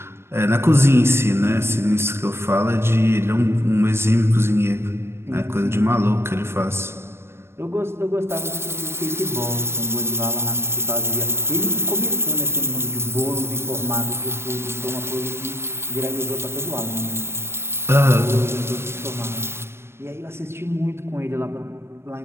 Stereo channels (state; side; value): late; left; 0.12 ms